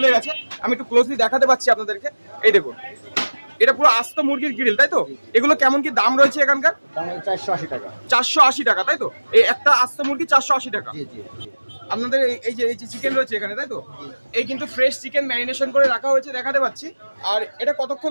গেছে, আমি একটু ক্লোজলি দেখাতে পাচ্ছি আপনাদেরকে। এই দেখুন, এটা পুরো আস্ত মুরগির গ্রিল, তাই তো? এগুলো কেমন কি দাম রয়েছে এখানকার? 480 টাকা। 480 টাকা, তাই তো? এই একটা আস্ত মুরগি 480 টাকা। আপনাদের এই যে চিকেন রয়েছে এখানে, তাই তো? এই কিন্তু ফ্রেশ চিকেন ম্যারিনেশন করে রাখা হয়েছে, দেখাতে পাচ্ছি। আর এটা কতক্ষণ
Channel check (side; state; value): both; inverted; correlation -1.00